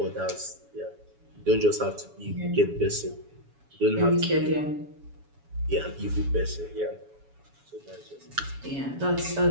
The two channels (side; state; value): left; late; 7.1 ms